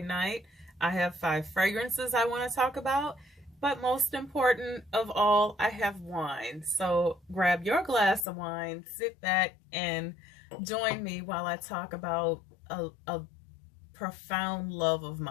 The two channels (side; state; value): right; drops out; at 8.2 s